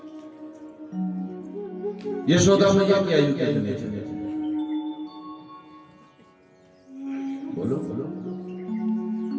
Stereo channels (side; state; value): both; identical; correlation 1.00